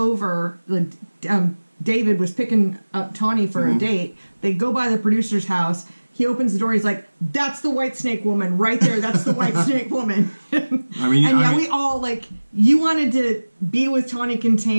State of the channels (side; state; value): both; inverted; correlation -1.00